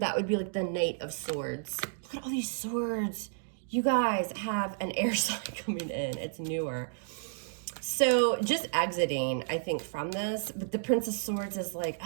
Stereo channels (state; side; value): silent; left; digital silence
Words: would be like the Knight of Swords. Look at all these swords. You guys have an air sign coming in. It's newer. So just exiting, I think, from this. But the Prince of Swords is like,